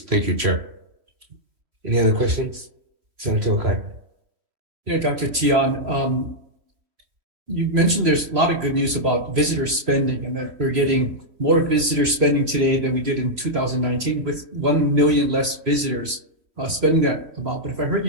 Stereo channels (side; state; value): left; late; 3.1 ms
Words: Thank you, Chair. Any other questions? Senator Okai. Yeah, Dr. Tian, you mentioned there's a lot of good news about visitor spending and that we're getting more visitor spending today than we did in 2019 with 1 million less visitors spending that amount. But if I heard